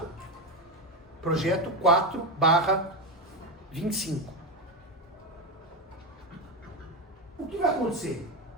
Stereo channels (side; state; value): both; normal; correlation 0.13